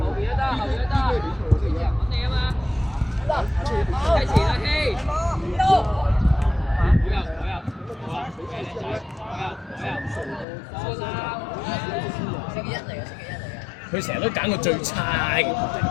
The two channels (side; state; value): right; drops out; at 10.5 s